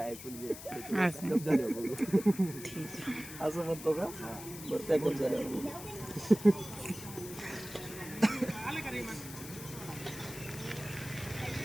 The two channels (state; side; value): noise; left; hiss, 12 dB below the sound